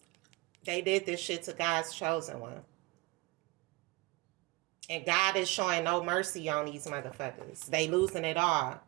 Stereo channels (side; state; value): left; quieter; 23.0 dB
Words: they did this shit to God's chosen one, and God is showing no mercy on these motherfuckers. They losing it all: